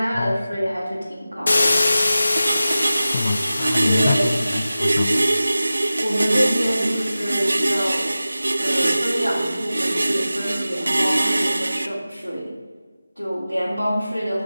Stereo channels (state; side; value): inverted; both; correlation -0.95